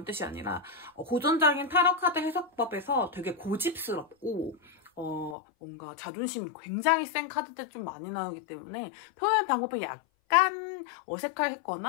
뜻이 아니라 고전적인 타로 카드 해석법에서 되게 고집스럽고 뭔가 자존심이 굉장히 센 카드들 좀 많이 나오기 때문에 표현 방법이 약간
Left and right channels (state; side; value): drops out; right; at 5.4 s